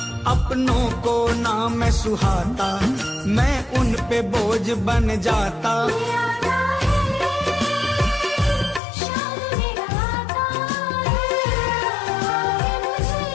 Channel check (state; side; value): drops out; right; at 8.8 s